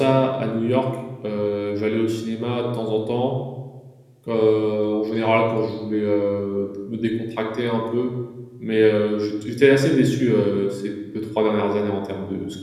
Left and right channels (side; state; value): both; identical; correlation 1.00